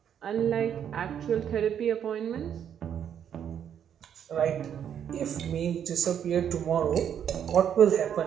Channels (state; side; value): quieter; left; 8.9 dB